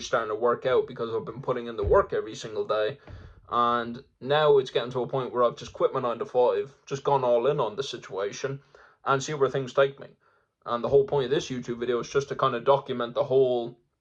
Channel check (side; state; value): both; identical; correlation 1.00